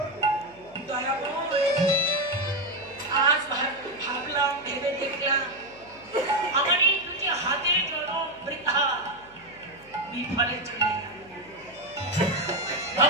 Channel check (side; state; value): left; noise; hum, 25 dB below the sound